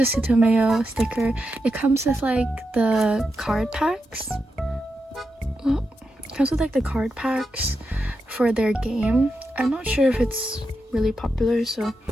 Sutomeo sticker. It comes with like the card packs. Well, it comes with like the card packs for their game. I'm not sure if it's really popular, so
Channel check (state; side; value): normal; both; correlation 0.87